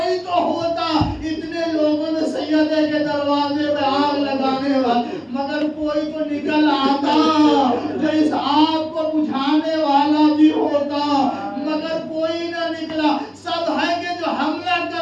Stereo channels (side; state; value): both; identical; correlation 1.00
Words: تو ہوتا، اتنے لوگوں نے سیدہ کے دروازے پہ آگ لگانے والا، مگر کوئی تو نکل آتا جو اس